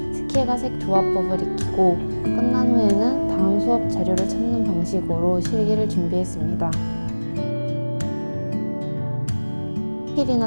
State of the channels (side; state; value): both; inverted; correlation -1.00